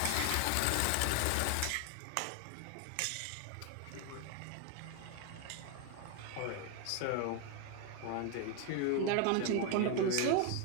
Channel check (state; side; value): different; both; correlation 0.01